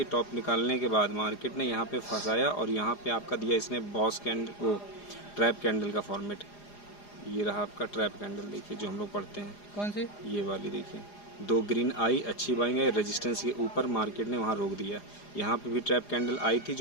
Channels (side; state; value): right; late; 4.9 ms